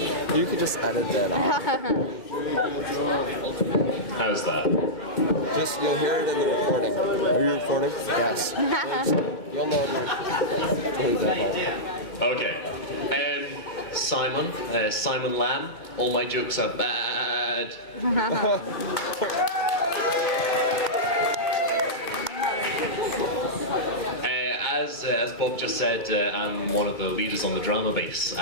You could just edit that out. How's that? Just, you'll hear it in the recording. Are you recording? Yes. You'll know. Okay. Simon Lamb. All my jokes are bad. As Bob just said, I'm one of the leaders on the drama base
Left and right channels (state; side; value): late; right; 2.2 ms